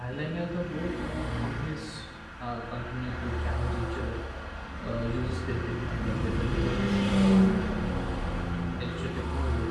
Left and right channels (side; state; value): both; identical; correlation 1.00